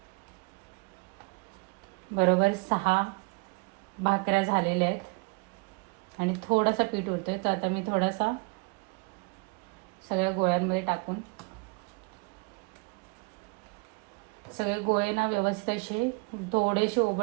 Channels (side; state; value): left; quieter; 30.5 dB